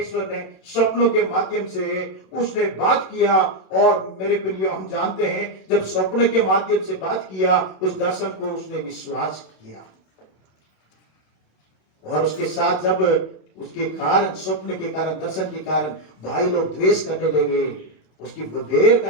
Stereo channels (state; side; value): late; right; 27 ms